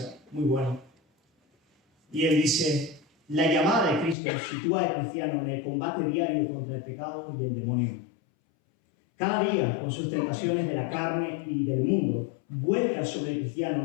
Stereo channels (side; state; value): right; drops out; at 4.2 s